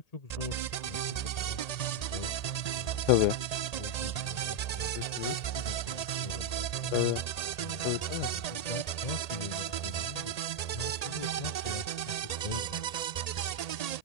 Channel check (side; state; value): right; late; 1.8 ms